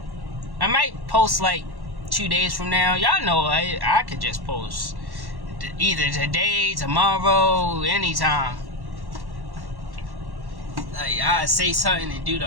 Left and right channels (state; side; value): late; left; 1.1 ms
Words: I might post like 2 days from now. Y'all know I could just post either today, tomorrow, anytime. Like, I say something and do